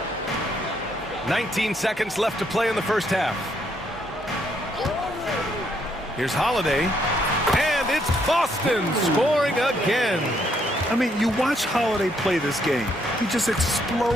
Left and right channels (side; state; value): both; normal; correlation 0.72